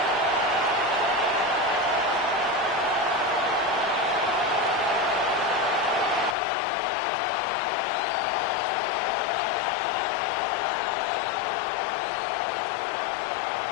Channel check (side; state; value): right; drops out; at 6.4 s